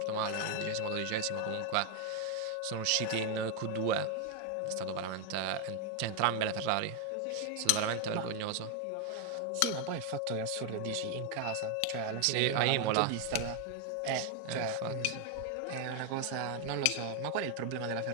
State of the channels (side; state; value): both; different; correlation 0.01